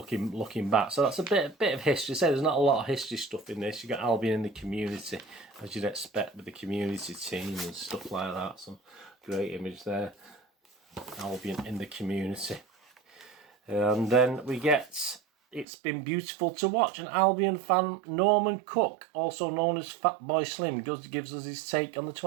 back. So that's a bit of history. So there's not a lot of history stuff in this. You got Albion in the community, as you'd expect with the community team and stuff like that. Some great image there. Albion in the community. And then we get It's Been Beautiful to Watch. An Albion fan, Norman Cook, also known as Fat Boy Slim, gives us his take on the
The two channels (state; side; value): drops out; left; at 15.7 s